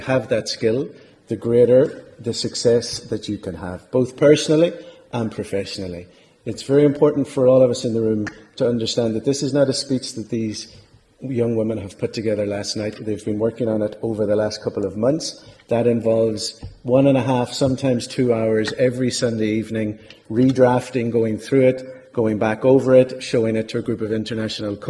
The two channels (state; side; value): identical; both; correlation 1.00